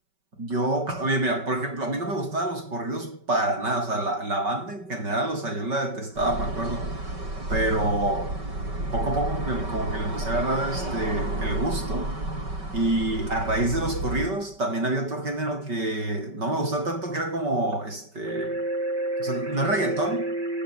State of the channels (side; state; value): left; late; 5.2 ms